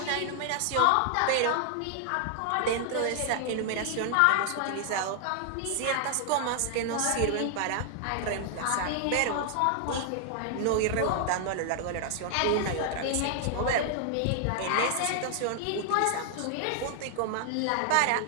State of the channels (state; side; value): different; both; correlation -0.01